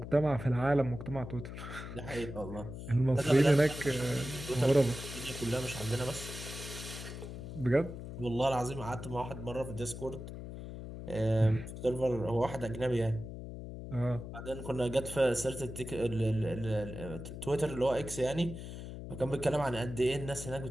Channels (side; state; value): left; noise; hum, 9 dB below the sound